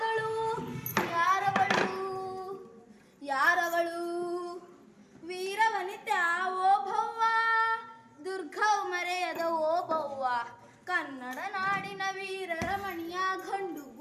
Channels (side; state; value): both; identical; correlation 1.00